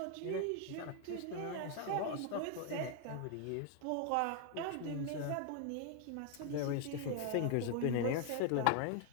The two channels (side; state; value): both; different; correlation 0.00